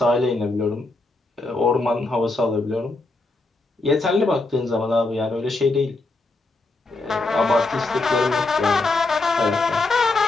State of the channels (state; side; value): quieter; right; 3.3 dB